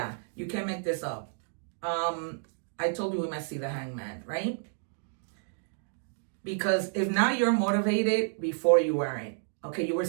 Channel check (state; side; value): silent; left; digital silence